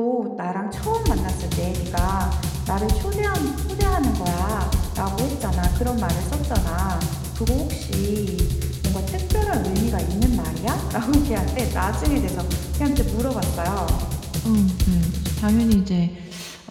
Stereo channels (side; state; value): both; identical; correlation 1.00